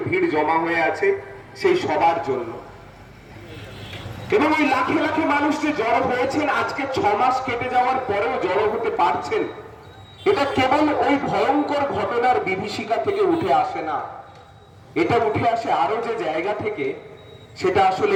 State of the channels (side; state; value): both; identical; correlation 1.00